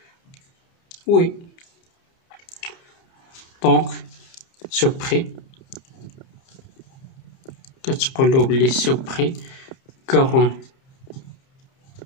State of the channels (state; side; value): late; right; 30 ms